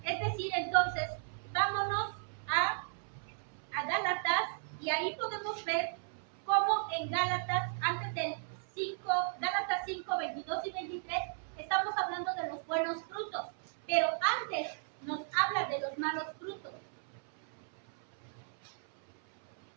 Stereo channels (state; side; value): silent; left; 54 dB below the other